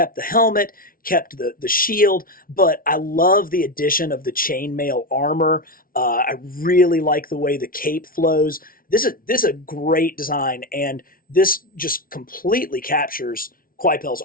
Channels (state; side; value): late; right; 0.42 ms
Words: the helmet, kept the shield, but I love the addition of the chainmail armor. I really like the way the cape flows. This is a great design, and this just completely captures Coipel's